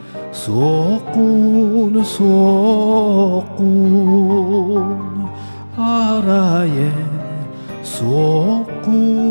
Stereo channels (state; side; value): inverted; both; correlation -1.00